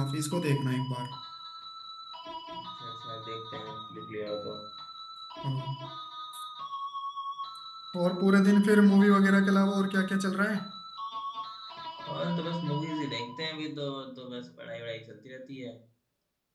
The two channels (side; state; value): both; identical; correlation 1.00